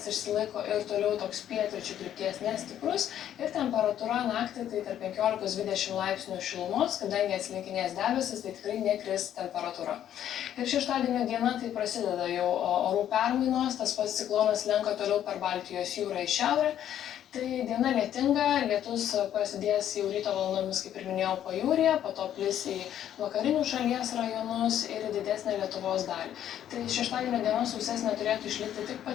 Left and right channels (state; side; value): quieter; right; 10.7 dB